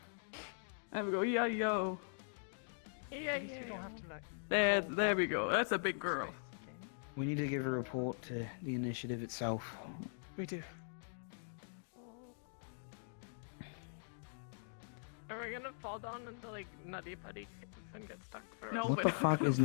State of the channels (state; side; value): silent; right; digital silence